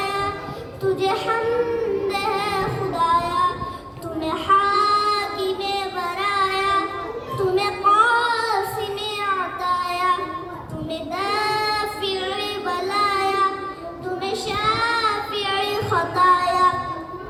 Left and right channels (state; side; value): identical; both; correlation 1.00